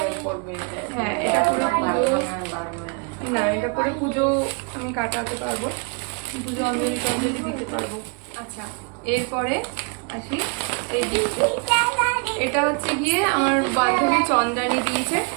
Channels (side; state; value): left; quieter; 35.6 dB